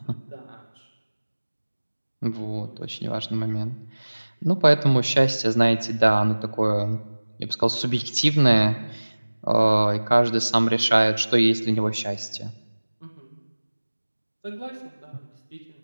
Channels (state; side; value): inverted; both; correlation -1.00